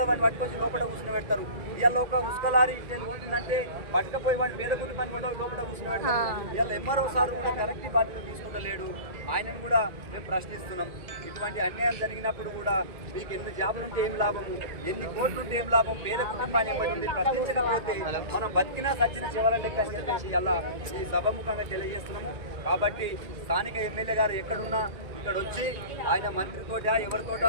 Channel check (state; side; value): late; left; 1.5 ms